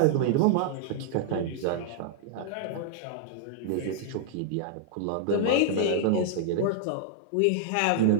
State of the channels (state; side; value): different; both; correlation -0.01